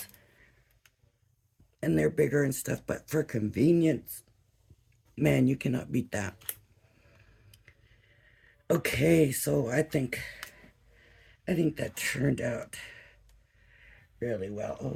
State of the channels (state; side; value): identical; both; correlation 1.00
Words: And they're bigger and stuff, but for convenience, man, you cannot beat that. Okay, so I think that turned out really well.